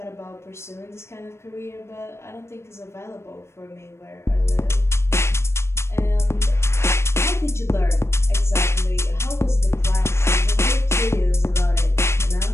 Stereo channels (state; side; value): late; right; 0.13 ms